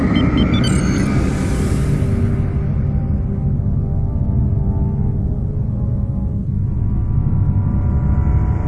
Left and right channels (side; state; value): both; identical; correlation 1.00